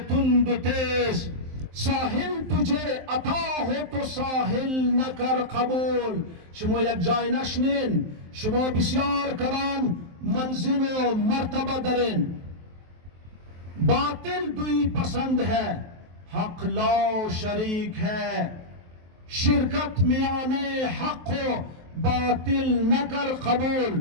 و تیز، ساحل تجھے عطا ہو تو ساحل نکر قبول. شما یک جای نشنین، شما بسیار کلان منزل و مرتبہ درین. باطل دوی پسند ہے، حق لا شریک ہے، شرکت میانے حق و باطل نکر قبول.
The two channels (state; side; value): late; left; 23 ms